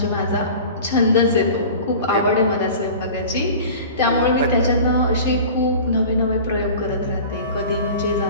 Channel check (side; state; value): both; inverted; correlation -0.38